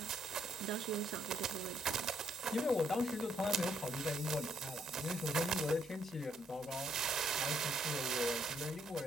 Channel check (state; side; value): normal; both; correlation 0.71